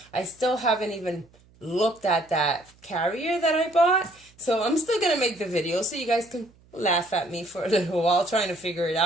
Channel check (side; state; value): right; noise; hum, 29 dB below the sound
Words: I still haven't even looked at that carrier that I bought, so I'm still going to make the video so you guys can laugh at me for a little while trying to figure it